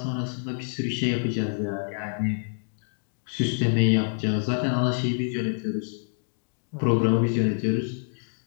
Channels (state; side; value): silent; right; digital silence